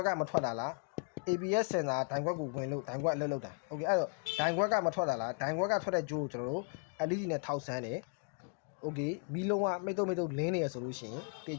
်ကမထွက်တာလား ABS စင်တာဒိုင်ခွက်ကိုဝင်လို့ဒိုင်ခွက်အလုပ်လုပ်တာ Okay အဲ့တော့ဒိုင်ခွက်ကမထွက်တာလားဒိုင်ခွက်ကထွက်တဲ့ဂျိုးကိုကျွန်တော်တို့ LED နဲ့ထောက်ဆန်းတယ် Okay မီးလုံးကမိတ်တုံလင်းနေရဆိုလို့ရှိရင်တ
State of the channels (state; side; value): quieter; right; 39.4 dB